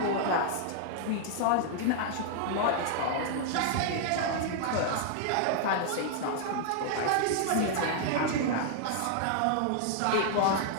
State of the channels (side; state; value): both; different; correlation -0.01